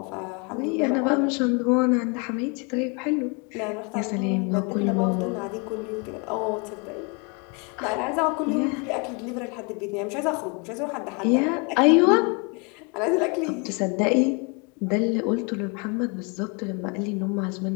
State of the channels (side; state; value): right; quieter; 32.7 dB